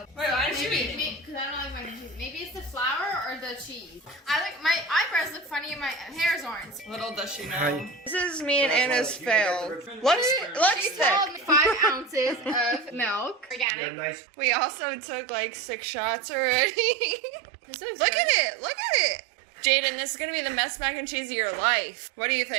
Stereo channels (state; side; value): drops out; left; at 13.7 s